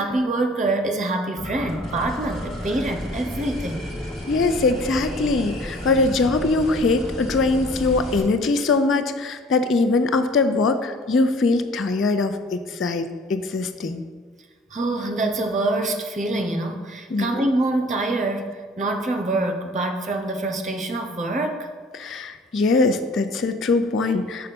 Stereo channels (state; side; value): normal; both; correlation 0.50